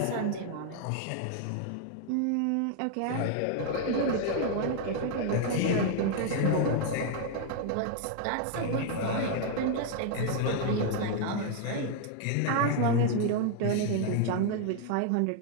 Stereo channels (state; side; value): different; both; correlation 0.00